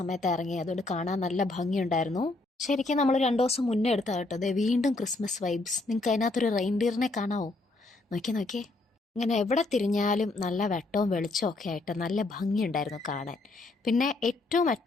ഇറങ്ങി, അതുകൊണ്ട് കാണാൻ നല്ല ഭംഗിയുണ്ടായിരുന്നു. ശരിക്കും നമ്മൾ 2 ദിവസം മുന്നേ എടുത്താ കേട്ടോ. അതെ, വീണ്ടും ക്രിസ്മസ് വൈബ്സ്. നിങ്ങൾക്ക് അതിനകത്തൊരു റെയിൻഡിയറിനെ കാണാവോ? നോക്കിയേ. ഇങ്ങനെ എവിടെ തിരിഞ്ഞാലും നല്ല വെട്ടവും വെളിച്ചവും ഒക്കെ ആയിട്ട് നല്ല ഭംഗിയുണ്ടായിരുന്നു കാണാൻ. പിന്നെ ഏറ്റവും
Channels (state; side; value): quieter; right; 3.1 dB